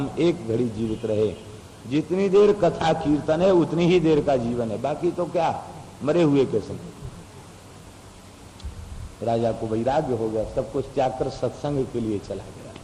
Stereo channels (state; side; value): identical; both; correlation 1.00